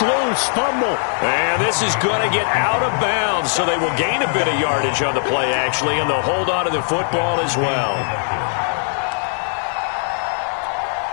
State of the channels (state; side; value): silent; right; 66 dB below the other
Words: loose. Fumble. And this is going to get out of bounds, so they will gain a bit of yardage on the play, actually, and they'll hold on to the football as well.